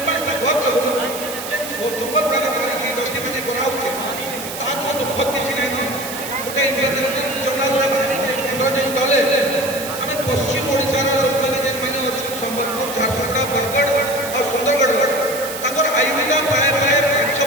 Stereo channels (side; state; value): right; noise; hiss, 9 dB below the sound